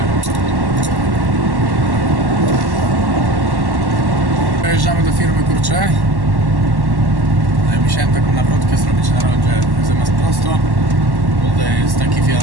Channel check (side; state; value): left; late; 1.1 ms